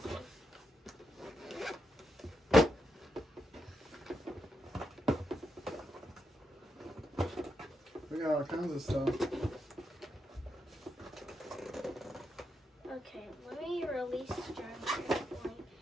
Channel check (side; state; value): both; normal; correlation 0.83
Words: We got all kinds of stuff. Okay, let me release the drone.